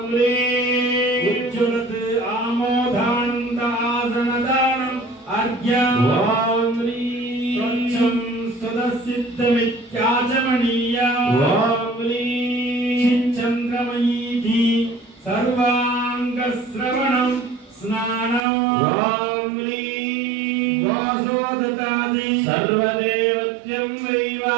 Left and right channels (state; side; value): drops out; left; at 18.4 s